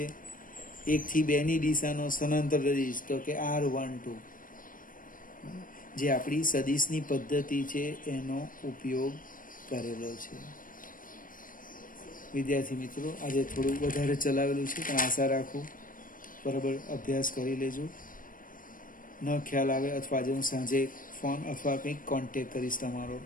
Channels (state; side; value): late; right; 0.40 ms